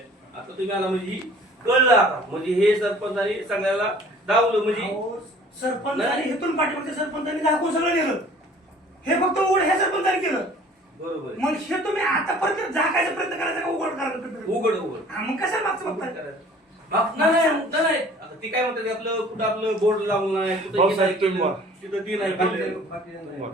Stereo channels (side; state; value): both; normal; correlation 0.50